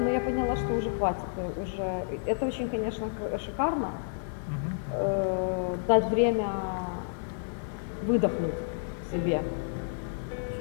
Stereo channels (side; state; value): right; silent; digital silence